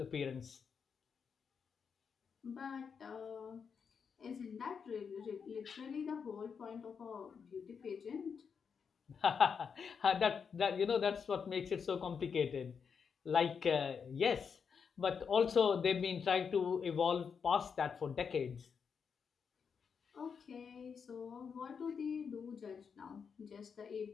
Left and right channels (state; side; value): quieter; right; 6.3 dB